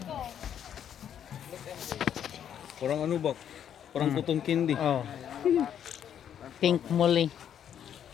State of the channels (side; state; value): right; quieter; 9.3 dB